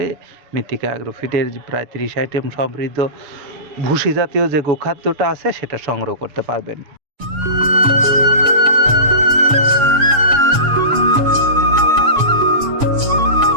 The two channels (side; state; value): left; late; 7.0 ms